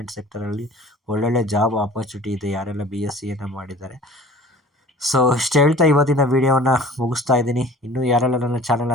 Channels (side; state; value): both; normal; correlation 0.44